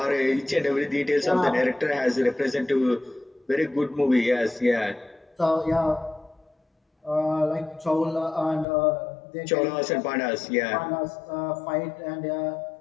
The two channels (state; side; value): drops out; right; at 8.7 s